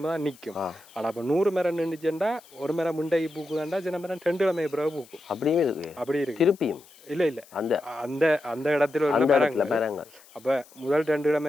தான் நிற்கும். ஆனால் இப்போ 100 மரம் நின்றுச்சுண்டா ஒரு மரம் முண்டைக்கு பூக்குதாண்டா, சின்ன மரம் 2 கிழமை பிறகு பூக்கும். அப்படியே இருக்கு. அப்படி இருக்கு. திருப்பியும் இல்லை அந்த அந்த அந்த இடத்துல உள்ள மரங்கள். அப்போ முதல் 2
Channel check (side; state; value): left; noise; hiss, 25 dB below the sound